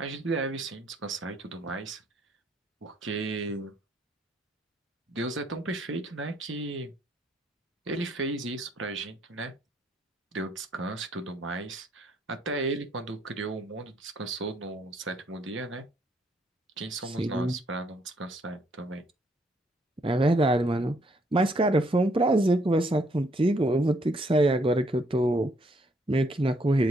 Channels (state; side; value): normal; both; correlation 0.69